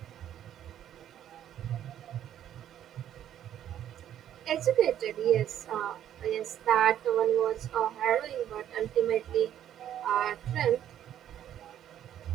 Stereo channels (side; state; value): left; quieter; 10.8 dB